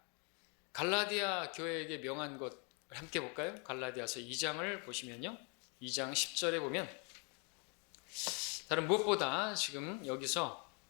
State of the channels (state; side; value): quieter; right; 35.3 dB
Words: 갈라디아 교회에게 명한 것 함께 볼까요? 갈라디아서 2장을 보시면요, 2장 10절에 보면 다른 무엇보다 지금 여기서